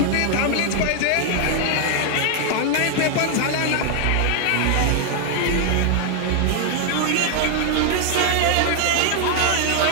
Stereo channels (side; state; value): both; different; correlation 0.00